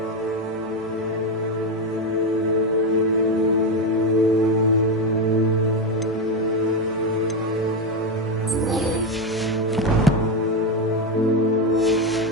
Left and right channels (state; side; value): normal; both; correlation 0.10